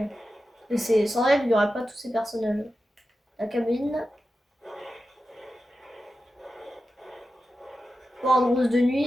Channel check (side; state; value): both; normal; correlation 0.92